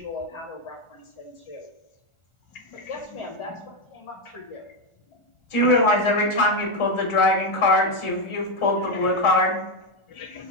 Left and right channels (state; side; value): late; right; 1.4 ms